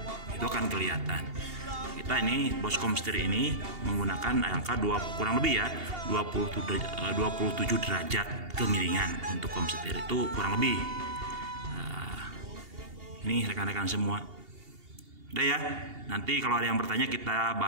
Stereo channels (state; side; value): late; left; 2.8 ms